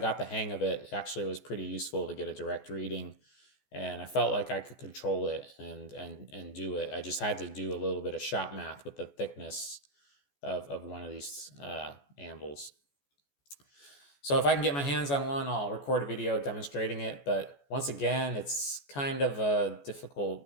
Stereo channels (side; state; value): right; late; 14 ms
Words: the hang of it, actually was pretty useful to get a direct reading, and I felt like I could control it and do it. I just had to do a little bit of shop math with the thickness of one of these anvils. So if I can get my hands on one, I'll record a video demonstrating it, but once again, it's kind of a